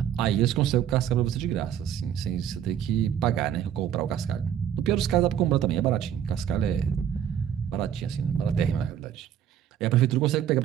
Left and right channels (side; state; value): left; quieter; 9.7 dB